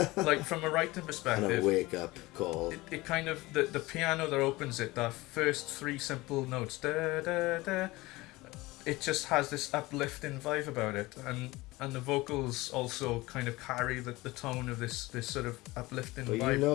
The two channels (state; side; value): quieter; right; 20.6 dB